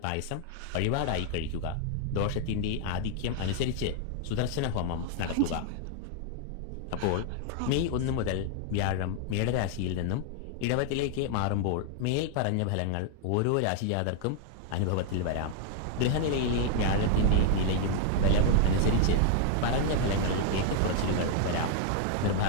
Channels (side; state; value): both; different; correlation 0.00